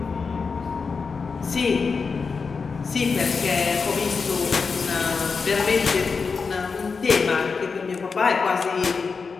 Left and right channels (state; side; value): quieter; right; 5.0 dB